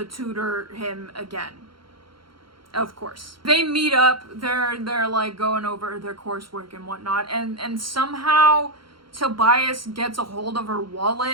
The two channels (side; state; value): left; late; 0.73 ms